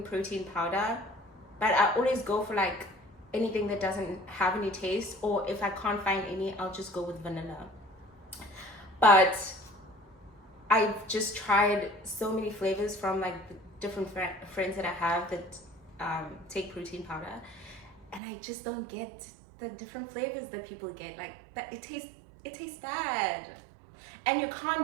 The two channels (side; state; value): left; drops out; at 18.2 s